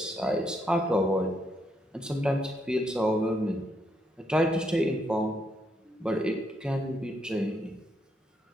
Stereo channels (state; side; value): normal; both; correlation 0.76